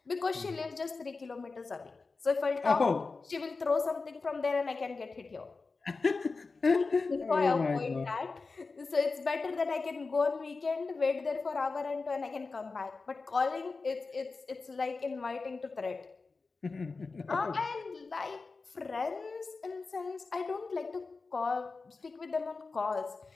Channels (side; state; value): right; quieter; 4.1 dB